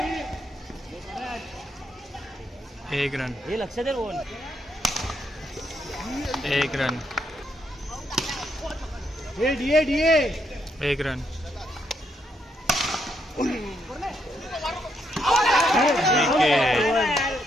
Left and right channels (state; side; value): normal; both; correlation 0.77